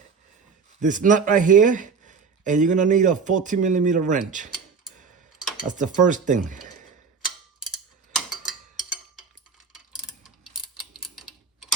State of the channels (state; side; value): quieter; left; 5.4 dB